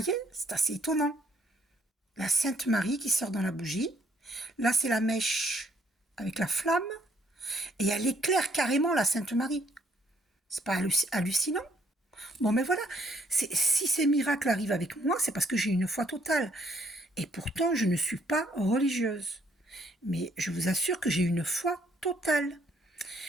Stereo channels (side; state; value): both; normal; correlation 0.67